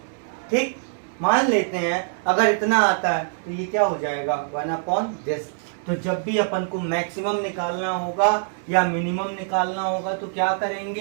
ठीक, मान लेते हैं अगर इतना आता है तो ये क्या हो जाएगा, 1/this। तो जब भी अपन को मैक्सिमम निकालना होगा या मिनिमम निकालना होगा तो क्या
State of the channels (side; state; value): left; silent; 63 dB below the other